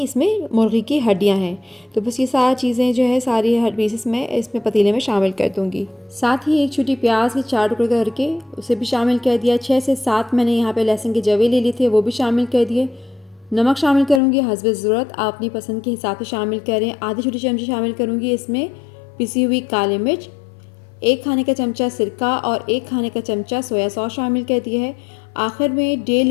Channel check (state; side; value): drops out; right; at 14.2 s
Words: इसमें मुर्गी की हड्डियाँ हैं। तो बस ये सारी चीज़ें जो है सारी पीसेस मैं इसमें पतीले में शामिल कर दूँगी। साथ ही एक छोटी प्याज के 4 टुकड़े करके उसे भी शामिल कर दिया। 6 से 7 मैंने यहाँ पे लहसुन के जवे ले लिए थे, वो भी शामिल कर दिए। नमक शामिल करूँगी हस्बे ज़रूरत, आप अपनी पसंद के हिसाब से शामिल करें। आधी छोटी चमची शामिल करूँगी इसमें पिसी हुई काली मिर्च, 1 खाने का चमचा सिरका और 1 खाने का चमचा सोया सॉस शामिल कर दिया है। आखिर में 1.5